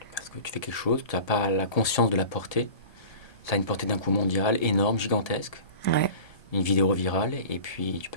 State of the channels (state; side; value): late; right; 1.3 ms